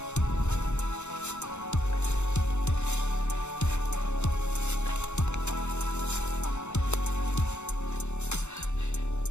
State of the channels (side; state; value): right; late; 0.83 ms